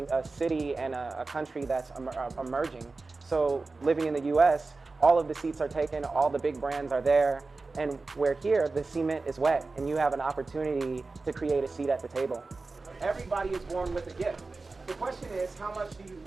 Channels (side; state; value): left; quieter; 3.7 dB